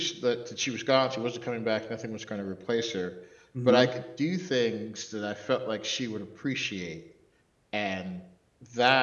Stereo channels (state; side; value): identical; both; correlation 1.00